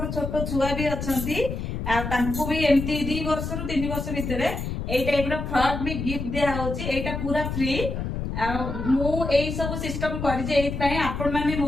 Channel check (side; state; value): left; noise; rumble, 4 dB below the sound